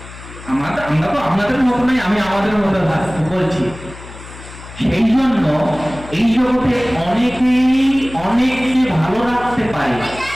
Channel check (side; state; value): left; noise; hum, 16 dB below the sound